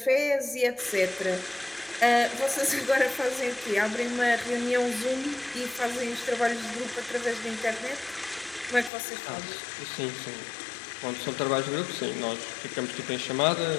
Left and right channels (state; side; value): drops out; right; at 8.9 s